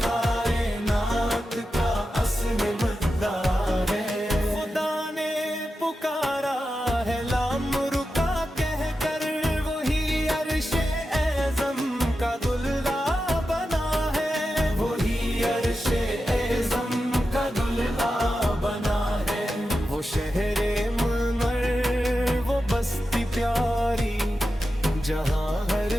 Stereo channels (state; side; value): normal; both; correlation 0.91